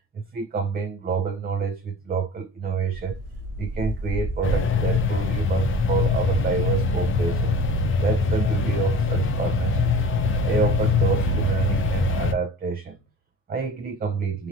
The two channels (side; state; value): both; normal; correlation 0.41